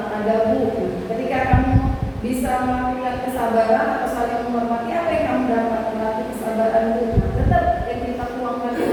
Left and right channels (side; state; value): both; identical; correlation 1.00